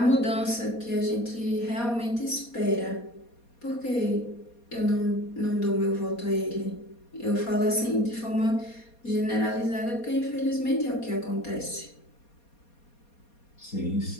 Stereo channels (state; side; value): late; right; 4.2 ms